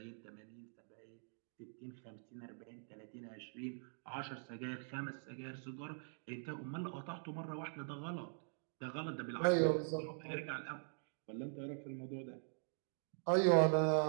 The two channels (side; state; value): left; silent; digital silence